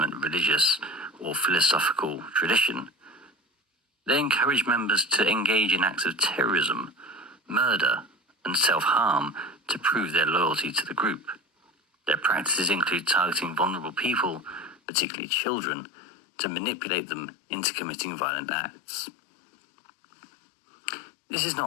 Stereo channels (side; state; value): right; drops out; at 14.8 s